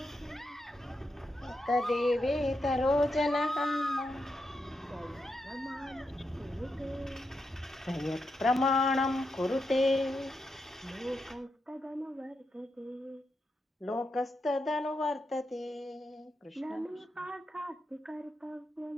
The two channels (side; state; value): both; normal; correlation 0.85